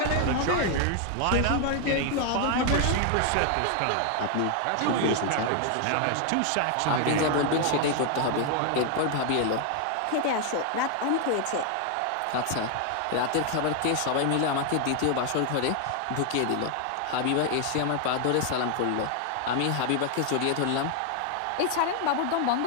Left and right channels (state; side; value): different; both; correlation 0.00